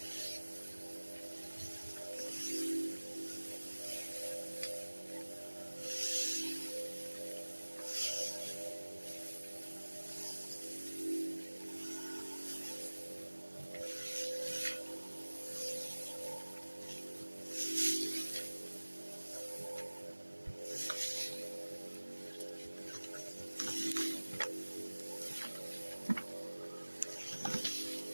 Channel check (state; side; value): inverted; both; correlation -1.00